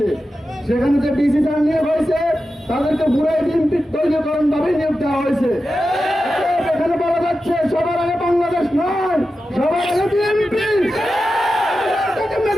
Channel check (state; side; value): normal; both; correlation 0.91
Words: সেখানে যে ডিসি যারা নিয়োগ হয়েছে তাদেরকে পুরাই বিএনপির দলীয়করণ ভাবে নিয়োগ দেওয়া হয়েছে। এখানে বলা যাচ্ছে সবার আগে বাংলাদেশ নয়, সবার আগে বিএনপি।